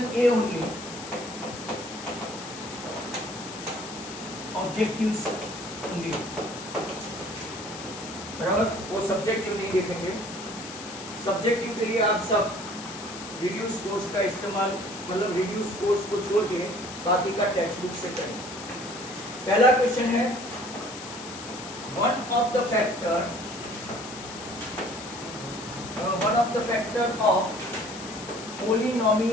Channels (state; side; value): noise; left; hiss, 12 dB below the sound